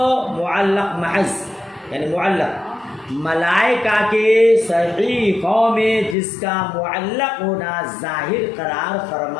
معلق محض یعنی معلق ملائکہ کے صحیفوں میں جس کا معلق ہونا ظاہر قرار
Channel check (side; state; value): right; drops out; at 6.2 s